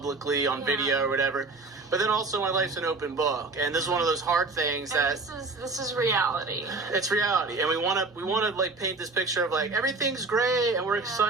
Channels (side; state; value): left; quieter; 3.6 dB